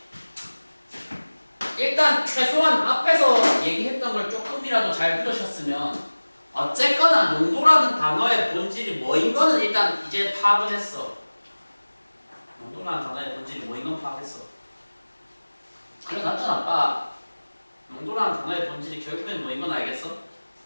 일단 최소한 앞에서 얘기했던 걸 조금이라도 잘 들으셨으면 어쨌거나 농도라는 단어의 본질이 뭐인 거는 일단 이제 파악을 했어. 농도라는 단어의 본질이 뭐인 건 파악했어. 그래 놨잖아 아빠. 농도라는 단어의 본질이 결국엔 뭐인 건 알겠어?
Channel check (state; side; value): inverted; both; correlation -1.00